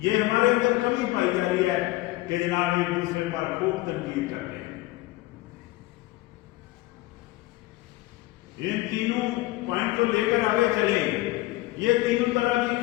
یہ ہمارے اندر کمی پائی جا رہی ہے کہ جناب ایک دوسرے پر خوب تنقید کرتے ہیں. ان تینوں پوائنٹ کو لے کر آگے چلیں. یہ 3 طرح کی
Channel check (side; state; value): right; quieter; 19.1 dB